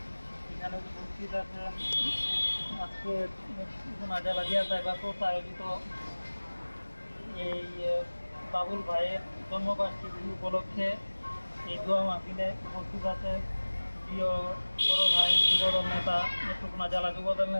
এখানে উপস্থিত আছেন আজকে নাজাল আজিয়া সাইবার কোর্স আয়োজিত এই বাবুল ভাইয়ের জন্মবার্ষিকী উপলক্ষে এই দোয়া মাহফিলে উপস্থিত আছেন প্রিয় বড় ভাই যুবদল নেতা নেত্রকোনা জেলা যুবদল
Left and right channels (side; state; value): both; inverted; correlation -1.00